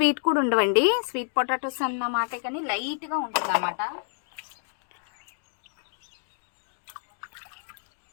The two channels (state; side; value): silent; right; digital silence